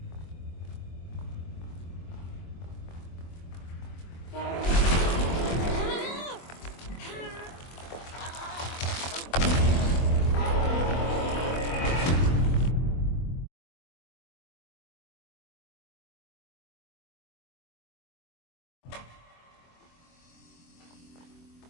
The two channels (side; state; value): right; late; 24 ms